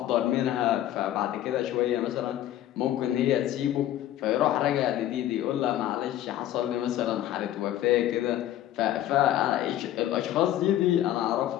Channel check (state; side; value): quieter; right; 12.7 dB